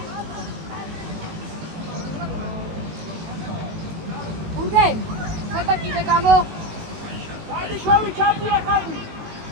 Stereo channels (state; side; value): late; left; 19 ms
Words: Urge, ხეთა კიდე გამო. შოვი ჩამია ხალხი.